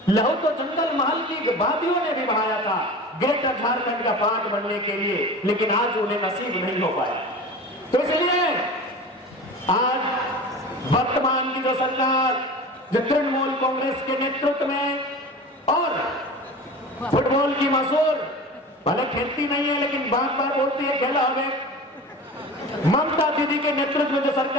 लहू तो जंगल महल की वादियों ने भी बहाया था ग्रेटर झारखंड का पार्ट बनने के लिए। लेकिन आज उन्हें नसीब नहीं हो पाया। तो इसलिए आज वर्तमान की जो सरकार, जो तृणमूल कांग्रेस के नेतृत्व में, और फुटबॉल की मशहूर, भले खेलती नहीं है लेकिन बार बार बोलती है खेला हमें, ममता दीदी के नेतृत्व में जो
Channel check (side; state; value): both; normal; correlation 0.35